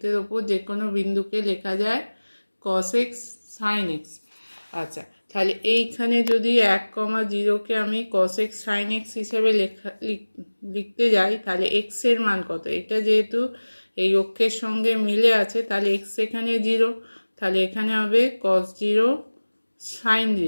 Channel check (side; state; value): both; inverted; correlation -1.00